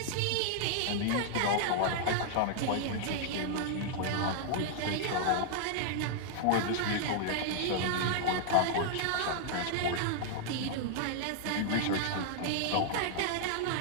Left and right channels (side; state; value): both; different; correlation -0.01